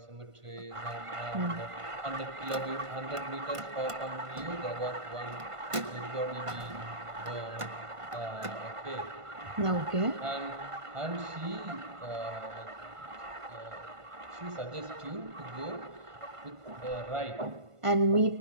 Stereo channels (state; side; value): late; left; 1.5 ms